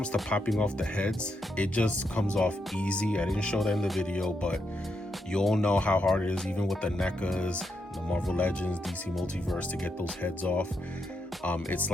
to popping off the heads, it just comes off easy. I didn't show that in the video, but you all know how hard it is, even with the NECAs, the Marvel Legends, DC Multiverse, to get those heads off. It's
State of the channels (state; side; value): normal; both; correlation 0.82